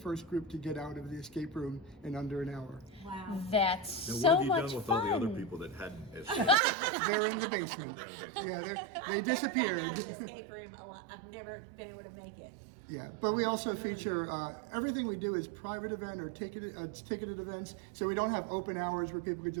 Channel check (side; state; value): left; drops out; at 6.6 s